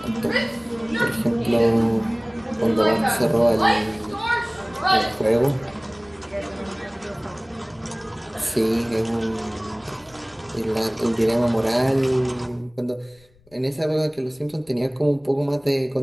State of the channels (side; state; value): left; noise; rumble, 30 dB below the sound